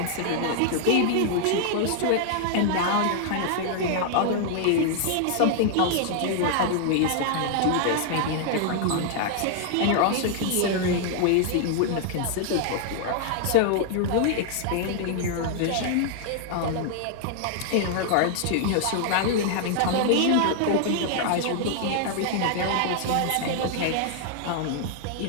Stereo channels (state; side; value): different; both; correlation 0.00